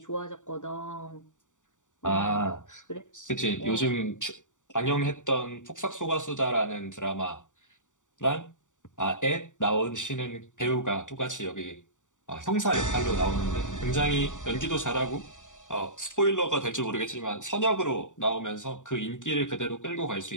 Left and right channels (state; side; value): late; right; 0.86 ms